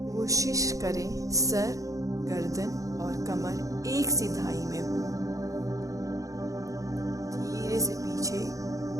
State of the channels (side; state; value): left; late; 0.16 ms